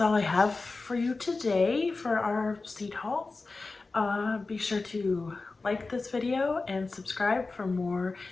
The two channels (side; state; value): right; quieter; 3.7 dB